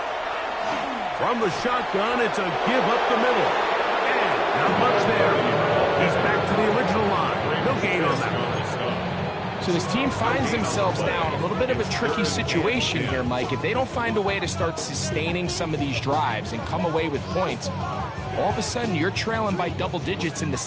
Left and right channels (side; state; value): both; identical; correlation 1.00